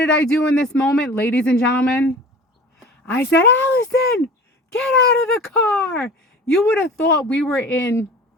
I do in this moment, ladies and gentlemen? I said, Allison, get out of the car. You would have thought we were in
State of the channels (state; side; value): normal; both; correlation 0.40